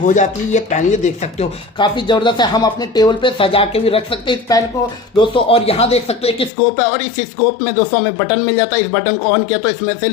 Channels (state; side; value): drops out; right; at 6.5 s